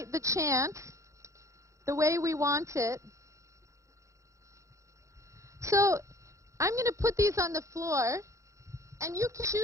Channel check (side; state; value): left; late; 0.15 ms